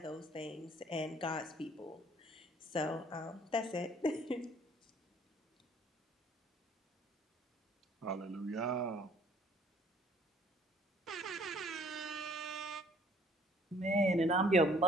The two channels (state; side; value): normal; both; correlation 0.58